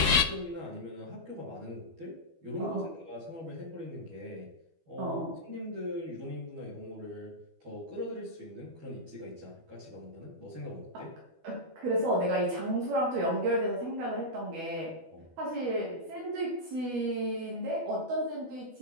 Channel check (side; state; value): left; late; 12 ms